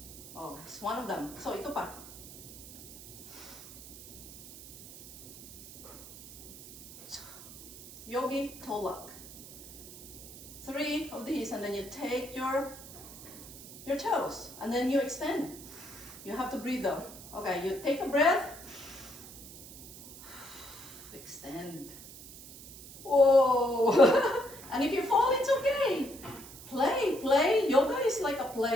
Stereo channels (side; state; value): right; noise; hiss, 16 dB below the sound